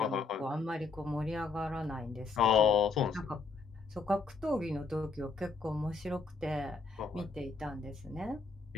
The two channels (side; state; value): right; quieter; 4.4 dB